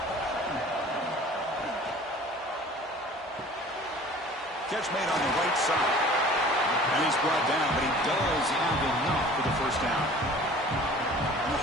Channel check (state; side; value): normal; both; correlation 0.46